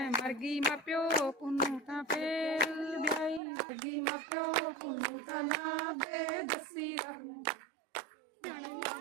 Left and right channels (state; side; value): drops out; left; at 3.4 s